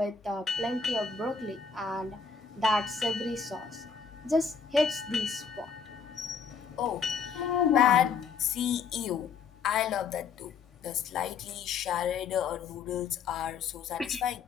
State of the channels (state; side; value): quieter; right; 5.8 dB